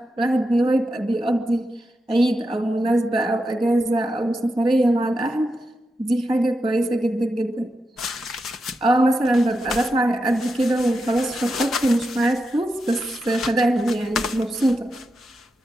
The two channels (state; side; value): normal; both; correlation 0.87